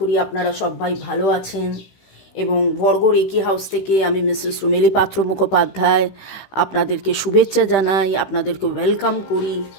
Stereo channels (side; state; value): right; late; 15 ms